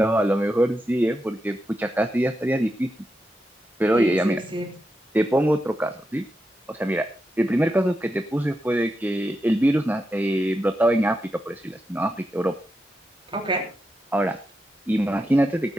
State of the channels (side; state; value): both; normal; correlation 0.87